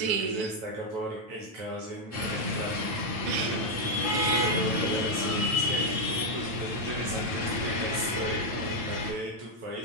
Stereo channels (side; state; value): left; late; 9.1 ms